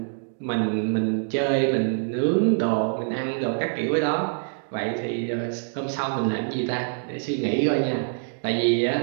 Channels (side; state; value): left; silent; digital silence